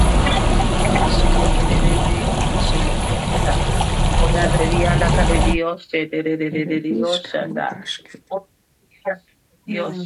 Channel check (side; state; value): both; identical; correlation 1.00